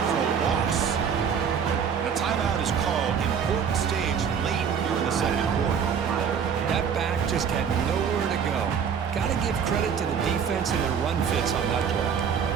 for a loss. And a timeout is called. Important stage late here in the second quarter. That back just had nowhere to go. Got to give credit to the defense and their run fits on that play.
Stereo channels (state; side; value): quieter; left; 7.2 dB